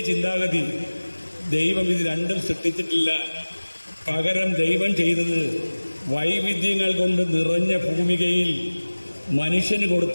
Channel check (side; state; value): both; inverted; correlation -1.00